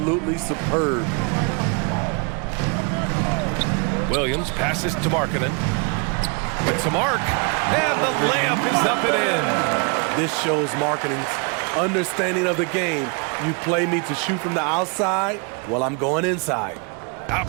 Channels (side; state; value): left; quieter; 34.3 dB